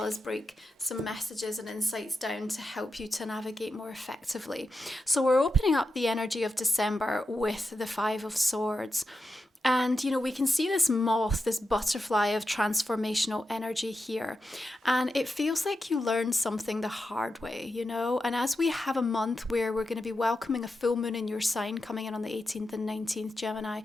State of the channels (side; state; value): both; normal; correlation 0.89